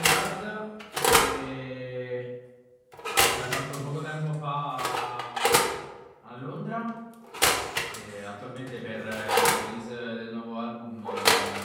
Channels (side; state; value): both; identical; correlation 1.00